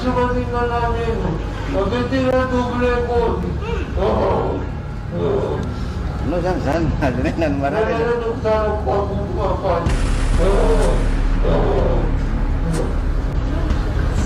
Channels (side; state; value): both; identical; correlation 1.00